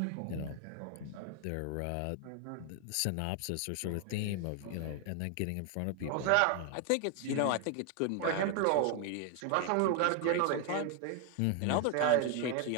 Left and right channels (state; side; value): different; both; correlation 0.00